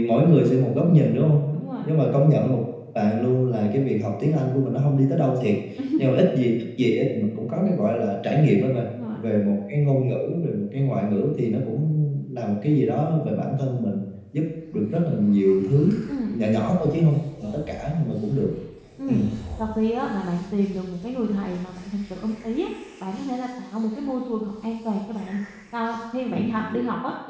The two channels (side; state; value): both; identical; correlation 1.00